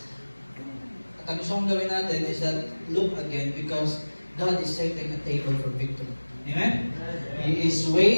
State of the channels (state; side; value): inverted; both; correlation -1.00